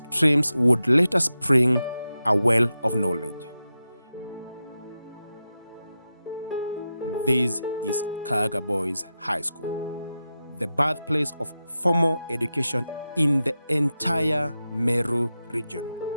would later spring a well of knowledge. This is Kaaga Boys High School, the birthplace of formal education in the entire Meru region.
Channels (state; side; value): inverted; both; correlation -0.91